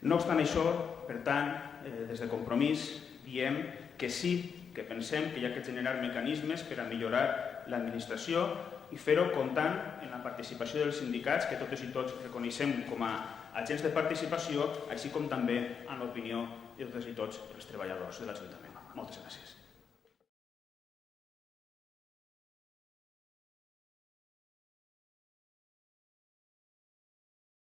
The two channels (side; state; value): right; quieter; 6.7 dB